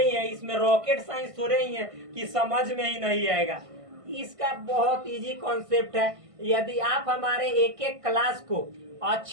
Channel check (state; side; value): late; left; 1.5 ms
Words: ही है, इसमें रॉकेट साइंस थोड़े ही है कि समझ में ही नहीं आएगा। इसका बहुत इजी कॉन्सेप्ट है। यदि आप हमारे एक एक क्लास को